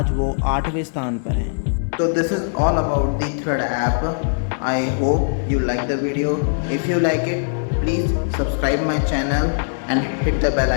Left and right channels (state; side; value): silent; right; 62 dB below the other